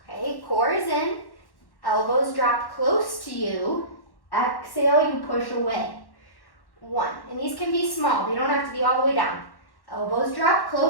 Okay, core is in, elbows drop close to you. Exhale, you push away. 1, and these can be small. They don't have to be all the way down. Elbows drop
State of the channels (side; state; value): right; late; 1.1 ms